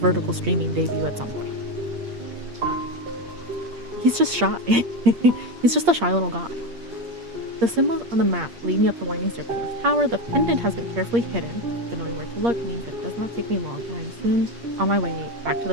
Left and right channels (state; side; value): late; left; 8.6 ms